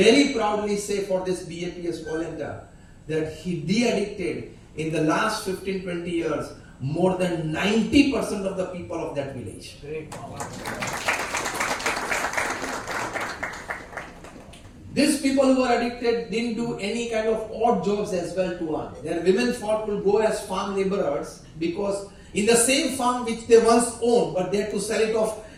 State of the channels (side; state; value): both; identical; correlation 1.00